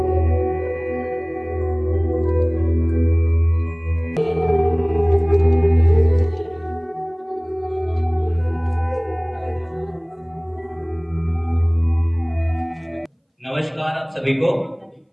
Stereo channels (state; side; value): identical; both; correlation 1.00